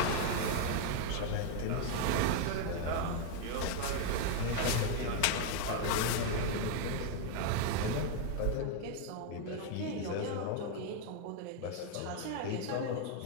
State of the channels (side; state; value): both; different; correlation 0.00